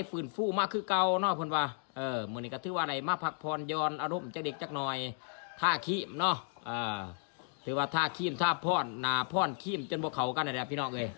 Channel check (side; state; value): right; silent; 55 dB below the other